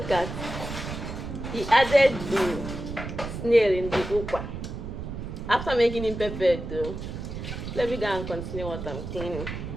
at, he added the snail in the ukwa. After making him prepared though, let me go and continue what I'm cleaning.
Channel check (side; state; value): right; noise; rumble, 7 dB below the sound